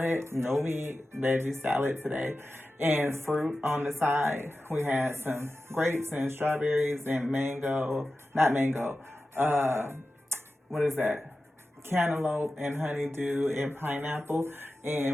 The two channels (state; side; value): normal; both; correlation 0.94